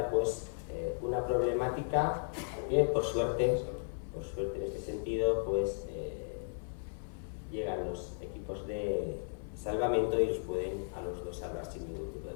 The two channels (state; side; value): silent; right; 54 dB below the other